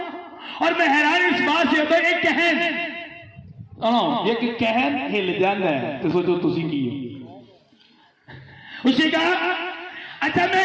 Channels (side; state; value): both; identical; correlation 1.00